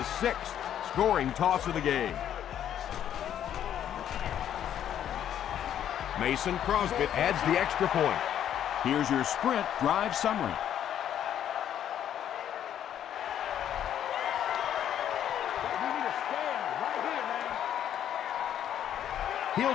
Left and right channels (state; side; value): quieter; right; 10.2 dB